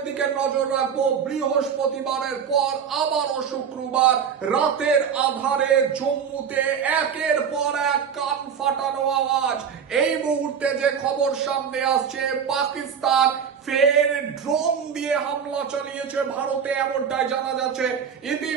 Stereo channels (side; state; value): left; quieter; 7.2 dB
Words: দিকে নজর রাখবো। বৃহস্পতিবারের পর আবারও শুক্রবার রাতের আধারে জম্মুতে একের পর এক কান ফাটানো আওয়াজ। এই মুহূর্তে যে খবর সামনে আসছে, পাকিস্তান ফের ড্রোন দিয়ে হামলা চালিয়েছে ভারতে, এমনটাই জানা যাচ্ছে।